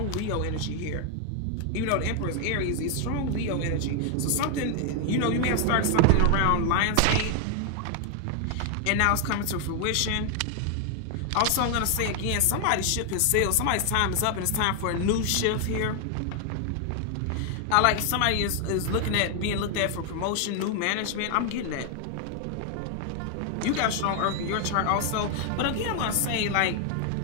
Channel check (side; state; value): both; different; correlation 0.00